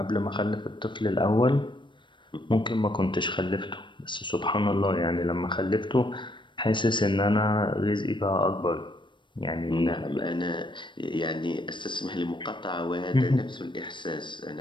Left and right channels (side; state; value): right; late; 0.23 ms